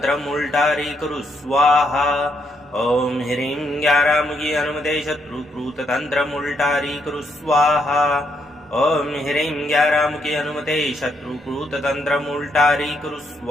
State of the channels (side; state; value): both; normal; correlation 0.76